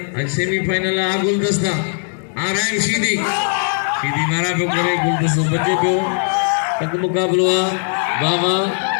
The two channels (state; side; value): silent; right; 67 dB below the other